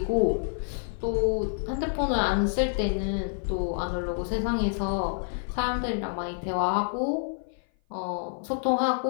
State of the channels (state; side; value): silent; right; 56 dB below the other